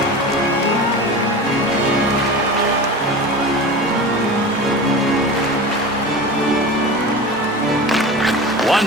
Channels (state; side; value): normal; both; correlation 0.31